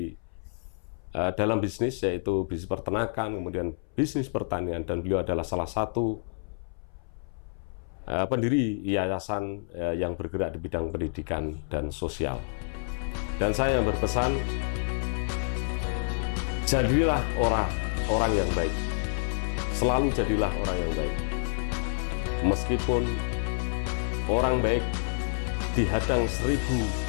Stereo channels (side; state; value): right; silent; 59 dB below the other